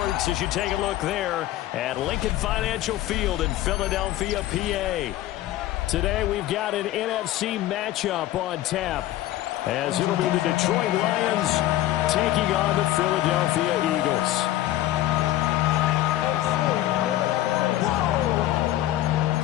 as you take a look there at Lincoln Financial Field in Philadelphia, PA. Today we've got an NFC matchup on tap as it'll be the Detroit Lions taking on the Philadelphia Eagles.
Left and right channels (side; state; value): right; quieter; 14.6 dB